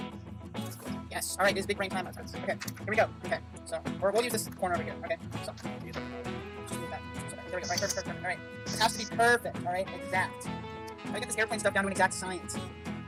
Yes. Alright, this is big brain time. Okay, here we go. Okay, so, or we'll use this corner over here. Okay, so, just move that. There we go. Alright, perfect. Alright, this has to be perfect. Alright, exact. I get this airplane stuff down to an exact science.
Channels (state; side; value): identical; both; correlation 1.00